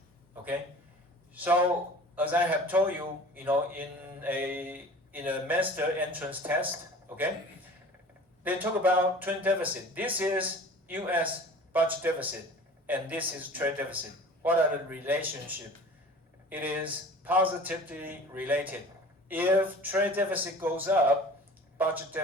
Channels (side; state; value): both; normal; correlation 0.42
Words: Okay? So as I have told you, in a master entrance test, okay, they talk about twin deficit. This is U.S. budget deficit, and this is trade deficit. What are the relationship? It is positively related. If trade deficit goes up, budget